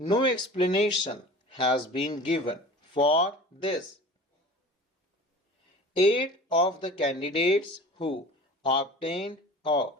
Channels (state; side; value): normal; both; correlation 0.40